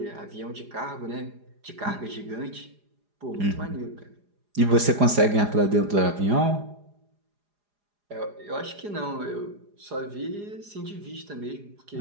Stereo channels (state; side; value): late; left; 4.9 ms